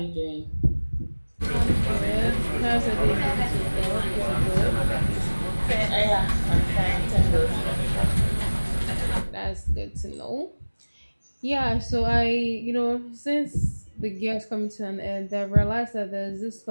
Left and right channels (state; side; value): inverted; both; correlation -1.00